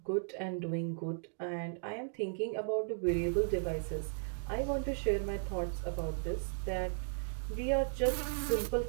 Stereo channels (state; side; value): silent; left; digital silence